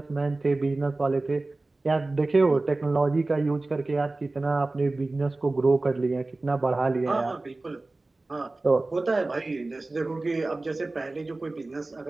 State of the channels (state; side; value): quieter; left; 3.1 dB